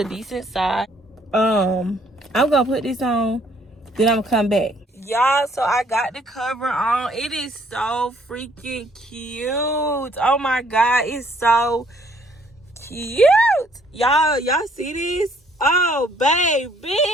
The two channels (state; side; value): normal; both; correlation 0.64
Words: decent size. I'm gonna put this on, then I'm gonna come back. Y'all, so I got the cover on. It is so freaking cute. Oh my God, it's so cute. Y'all see this? Oh